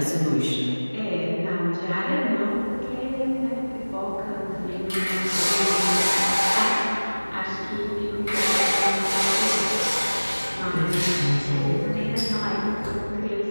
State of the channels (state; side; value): inverted; both; correlation -1.00